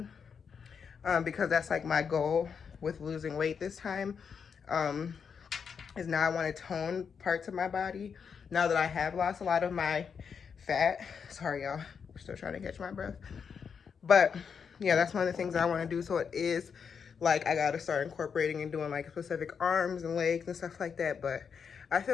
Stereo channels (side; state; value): right; quieter; 6.5 dB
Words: because that's like my goal with losing weight this time. Is now I want to tone parts of my body now that I have lost a lot of my fat. Sorry, y'all. We're still trying to catch my breath. But yeah, that's one of the things that I want to do. So it is like I got to start incorporating and doing like specific arms and legs and stuff like that. But I